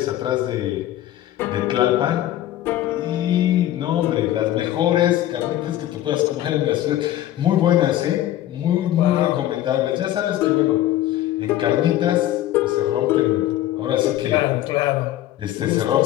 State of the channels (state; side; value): quieter; right; 13.5 dB